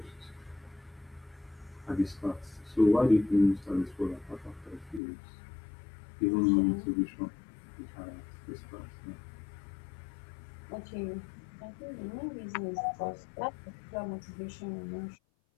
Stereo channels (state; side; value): drops out; right; at 5.0 s